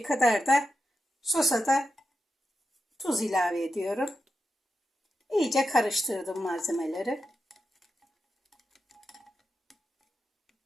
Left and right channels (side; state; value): both; normal; correlation 0.89